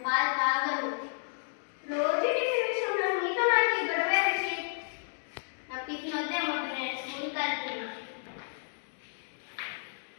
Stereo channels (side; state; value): right; silent; digital silence